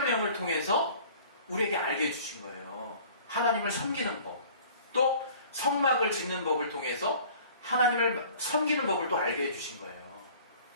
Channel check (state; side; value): inverted; both; correlation -0.48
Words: 통해서 우리에게 알게 해주신 거예요. 하나님을 섬기는 법, 또 성막을 짓는 법을 통해서 하나님을 섬기는 법을 또 알게 해주신 거예요.